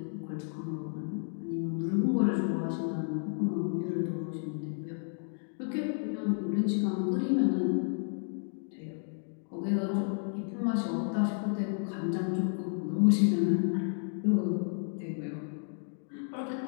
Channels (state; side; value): silent; right; 56 dB below the other